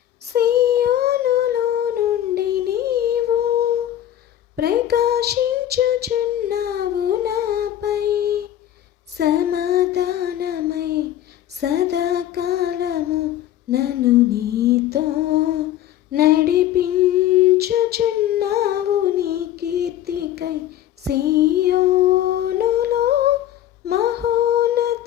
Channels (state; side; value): quieter; right; 12.0 dB